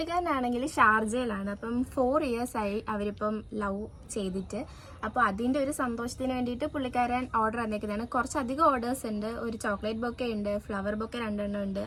ഷാർജയിലാണ്. അപ്പം 4 years ആയി അവരിപ്പം ലവ് ചെയ്തിട്ട്. അപ്പോൾ അതിൻ്റെ ഒരു സന്തോഷത്തിന് വേണ്ടിയിട്ട് പുള്ളിക്കാരൻ ഓർഡർ വന്നേക്കുന്നതാണ്. കുറച്ചധികം ഓർഡേഴ്സ് ഉണ്ട്. ഒരു ചോക്ലേറ്റ് ബൊക്കെ ഉണ്ട്, ഫ്ലവർ ബൊക്കെ 2 എണ്ണം ഉണ്ട്,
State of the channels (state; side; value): identical; both; correlation 1.00